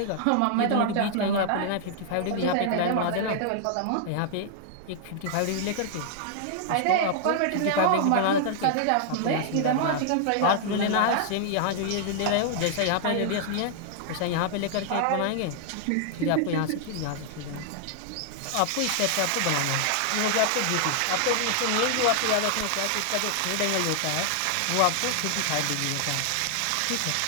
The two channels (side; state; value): both; different; correlation -0.01